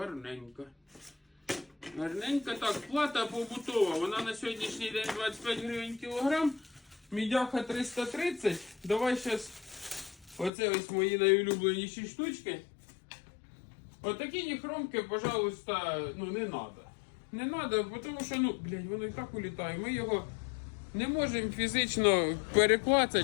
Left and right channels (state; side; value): drops out; right; at 10.5 s